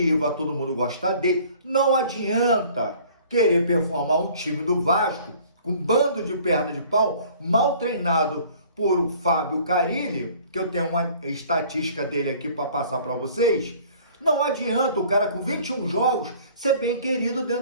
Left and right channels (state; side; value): inverted; both; correlation -0.52